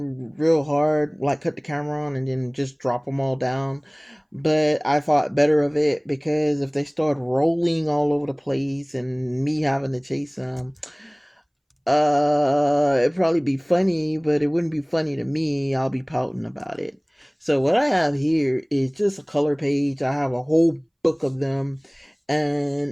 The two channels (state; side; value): identical; both; correlation 1.00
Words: real hard, like cut the camera on and then just drop them all down. But I thought better of it because if they start rolling all over the place and me having to chase them, it'd probably be funny, but it wouldn't be funny to me. I'll be pouting about it. So what I have here is just a color page. I have a whole book of them,